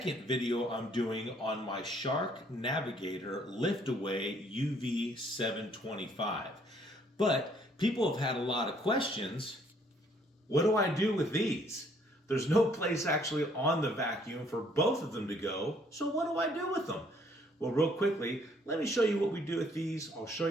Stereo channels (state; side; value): normal; both; correlation 0.64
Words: video I'm doing on my Shark Navigator lift-away UV725. But people have had a lot of questions. What do I do with these? There's no place actually on the vacuum for both of them to go, so what do I do with them? Well, real quickly, let me show you what we do with these. I'll show